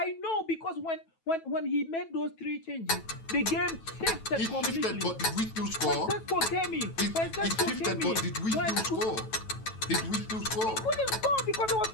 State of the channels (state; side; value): late; right; 9.1 ms